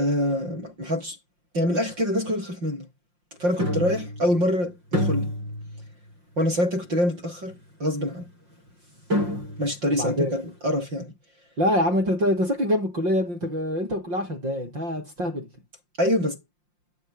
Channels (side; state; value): left; late; 5.7 ms